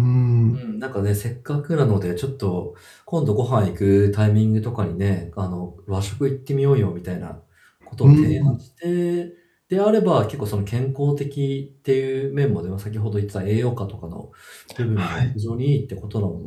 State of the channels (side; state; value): both; identical; correlation 1.00